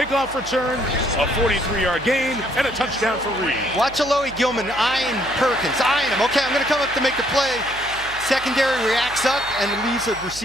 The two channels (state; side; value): noise; right; hum, 17 dB below the sound